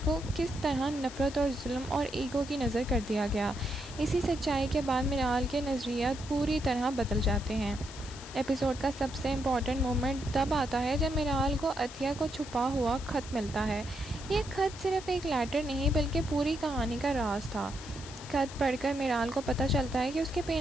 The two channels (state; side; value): noise; left; hiss, 15 dB below the sound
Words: किस तरह नफ़रत और जुल्म और ईगो की नज़र कर दिया गया। इसी सच्चाई के बाद मिराल के नज़रियात पूरी तरह बदल जाते हैं। एपिसोड का सबसे इम्पॉर्टेंट मोमेंट तब आता है जब मिराल को अतिया को छुपा हुआ ख़त मिलता है। ये ख़त सिर्फ एक लेटर नहीं बल्कि पूरी कहानी का राज था। ख़त पढ़कर मिराल को पता चलता है कि उसके